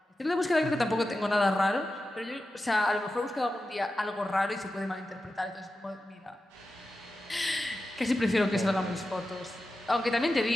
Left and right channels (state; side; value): normal; both; correlation 0.92